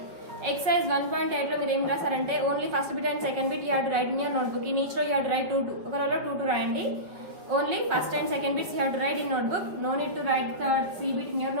Exercise 1.8 లో మీరు ఏం రాసారంటే only first bit and second bit you have to write in your notebook. In each row you have to write 2 ఒక రోలో 2 రాయండి. Only first and second bits you have to write in notebook. No need to write the C bit in your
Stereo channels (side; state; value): left; late; 5.4 ms